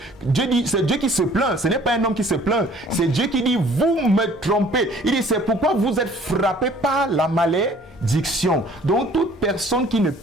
Dieu dit, c'est Dieu qui se plaint, ce n'est pas un homme qui se plaint, c'est Dieu qui dit, vous me trompez. Il dit, c'est pourquoi vous êtes frappés par la malédiction. Donc toute personne qui ne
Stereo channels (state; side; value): normal; both; correlation 0.54